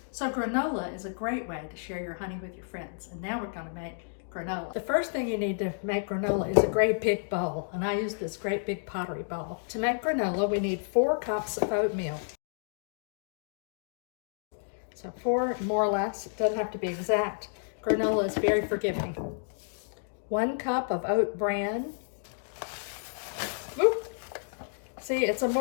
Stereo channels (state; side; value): silent; right; digital silence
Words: So granola is a great way to share your honey with your friends. And now we're going to make granola. The first thing you need to make granola is a great big bowl. And I use this great big pottery bowl. To make granola, we need 4 cups of oatmeal. So 4 more or less, it doesn't have to be exact. Granola is very forgiving. 1 cup of oat bran. Whoop. See, it's a